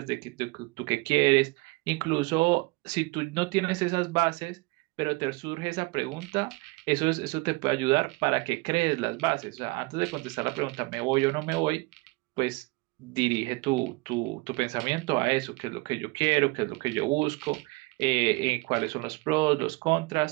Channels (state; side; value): quieter; left; 24.7 dB